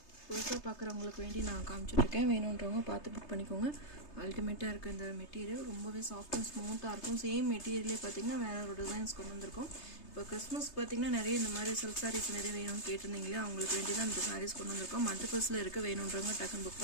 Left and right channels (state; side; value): late; right; 3.3 ms